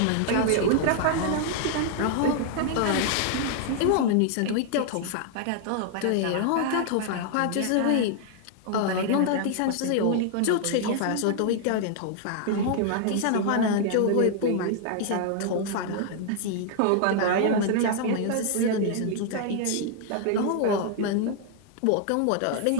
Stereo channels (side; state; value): both; different; correlation 0.00